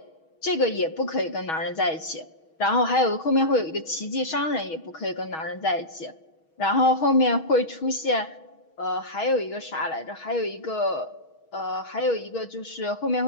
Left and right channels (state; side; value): late; right; 6.3 ms